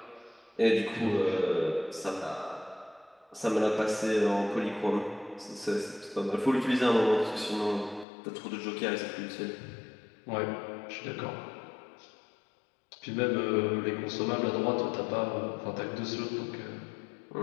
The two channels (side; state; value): right; drops out; at 8.1 s